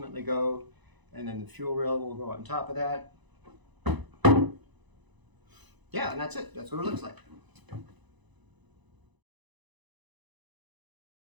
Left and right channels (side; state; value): left; late; 1.0 ms